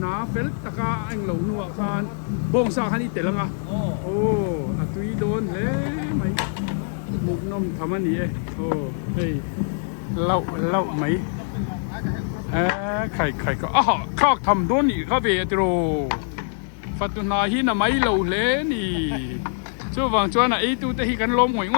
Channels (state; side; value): silent; right; digital silence